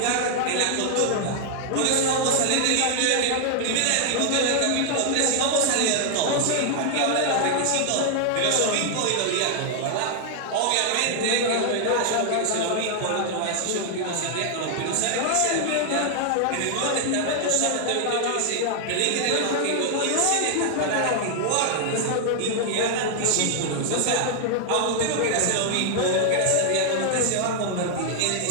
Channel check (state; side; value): different; both; correlation 0.00